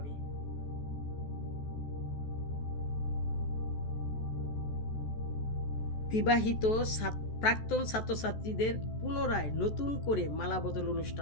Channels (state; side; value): late; right; 14 ms